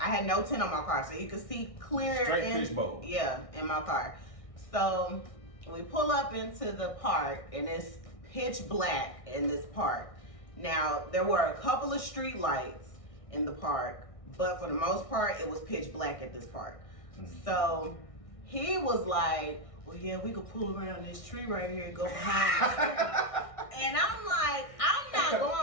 no tent on my car. So you could see clear. Straight fishbowl. Yeah, in my car. So we pull up into the park and it's pitch black in this park. Now, there were a couple of street lights in the park, but for the most part, it was pitch black at this park. Mm-hmm. So he was like, well, yeah, we could pull around this tree right here and go behind the tree. And I'm like, I'm not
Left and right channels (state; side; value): late; right; 1.6 ms